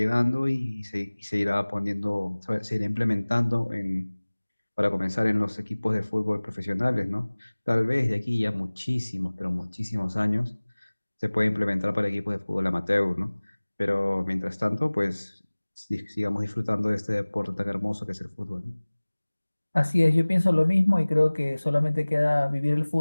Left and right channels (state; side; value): inverted; both; correlation -1.00